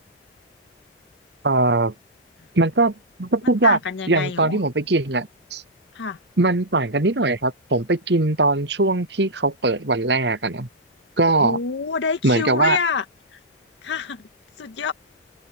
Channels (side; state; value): both; normal; correlation -0.11